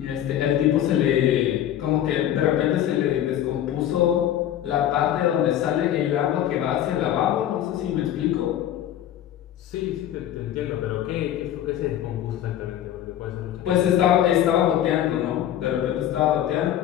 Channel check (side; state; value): right; quieter; 11.5 dB